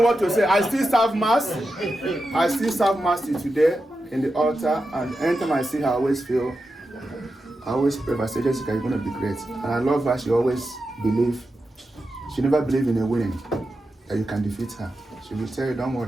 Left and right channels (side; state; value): both; normal; correlation 0.90